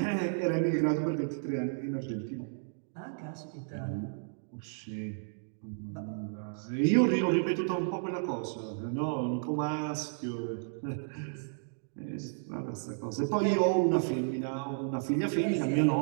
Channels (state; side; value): silent; left; digital silence